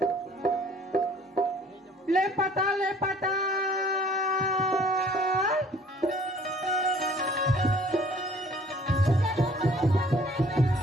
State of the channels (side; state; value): both; normal; correlation 0.55